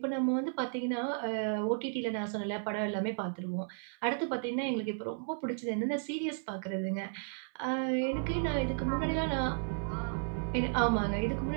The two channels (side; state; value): left; silent; 55 dB below the other